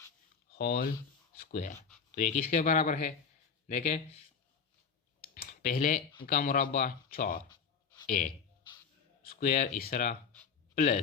whole square. तो ये किसके बराबर है, देखें पहले का मुरब्बा 4a स्क्वायर इस तरह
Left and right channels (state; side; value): quieter; right; 6.0 dB